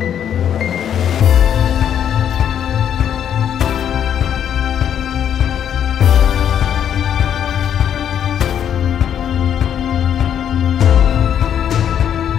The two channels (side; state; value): right; quieter; 9.3 dB